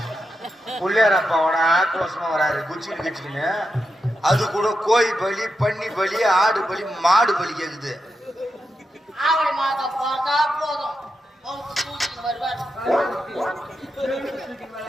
புள்ளியார் அப்பாவோட ஆக்ரோஷமா வராது குச்சின்னு கிச்சின்னு. அது கூட கோழி பலி, பன்னி பலி, ஆடு பலி, மாடு பலி கேக்குது. ஆவணி மாதம் பார்த்தா போதும் தூக்கிட்டு வருவார்.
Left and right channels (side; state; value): both; normal; correlation 0.87